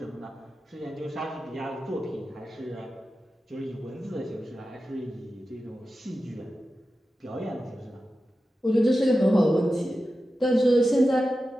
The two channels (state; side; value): normal; both; correlation 0.93